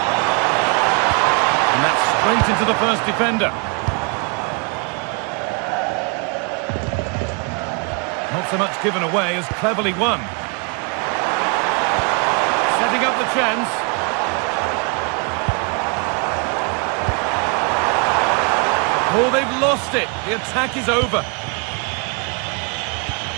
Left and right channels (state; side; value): quieter; left; 34.3 dB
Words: And that's straight into the first defender. Not so much given away as cleverly won. Setting up the chance. Oh, they've lost it. The attack is over.